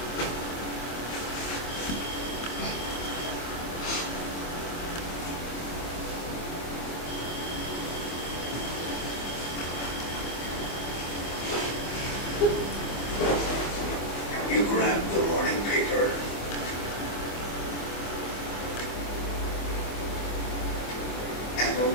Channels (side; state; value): right; late; 25 ms